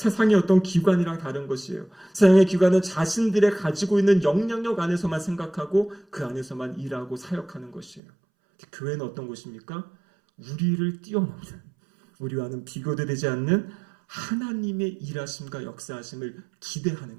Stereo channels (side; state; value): left; drops out; at 8.0 s